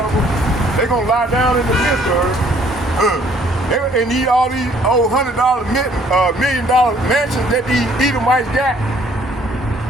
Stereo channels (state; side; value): normal; both; correlation 0.61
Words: they gonna lie down in the midst of her. They need all these old $100 $1 million mansions that these Edomites got.